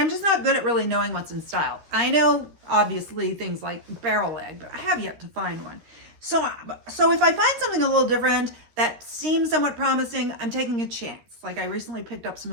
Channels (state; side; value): late; left; 13 ms